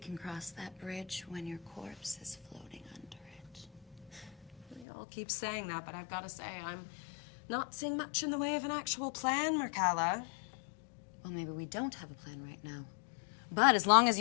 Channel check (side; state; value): right; drops out; at 4.9 s